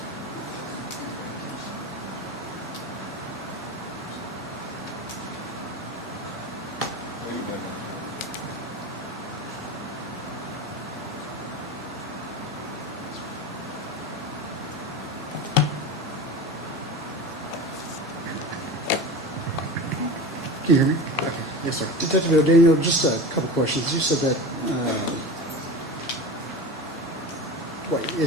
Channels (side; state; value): both; normal; correlation 0.29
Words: Can you hear me? Okay. Yes, sir. Detective O'Daniel, just a couple questions. You said that,